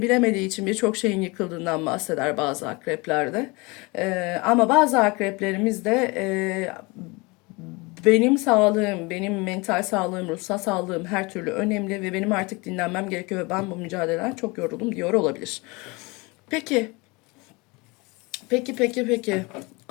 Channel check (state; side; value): quieter; right; 26.2 dB